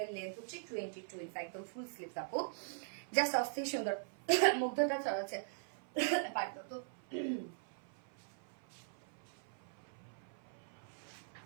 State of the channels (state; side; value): silent; left; 50 dB below the other